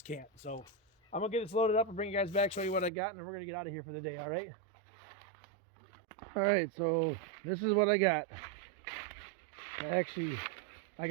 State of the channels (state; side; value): drops out; left; at 2.9 s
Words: can't. So I'm gonna get this loaded up and bring you guys back, show you what I got, and then we're gonna get out of here for the day. All right. All right. So this is what I got. Actually, I